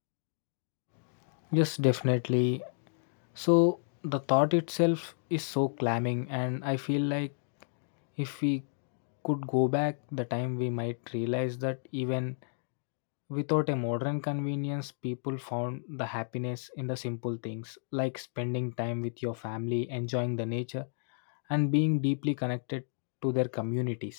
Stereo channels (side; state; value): right; silent; digital silence